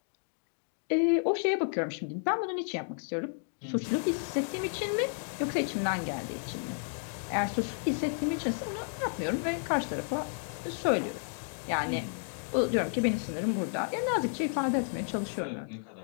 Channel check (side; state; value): right; silent; 56 dB below the other